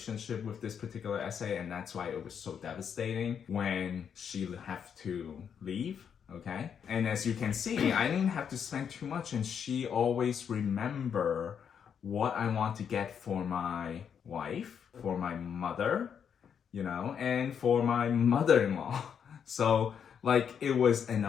with this particular essay, and that's why it was so devastating when she had to leave. Okay? And as you can see, I didn't have to spend too much, and she always remember what I want to get for my wife, for my mother, and for my mother-in-law. So it was an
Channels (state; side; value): quieter; right; 7.6 dB